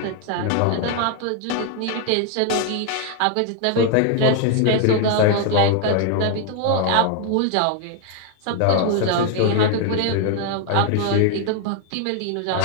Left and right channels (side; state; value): both; different; correlation 0.00